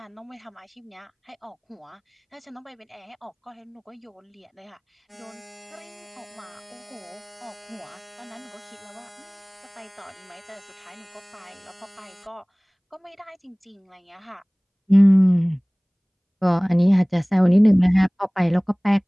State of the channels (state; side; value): identical; both; correlation 1.00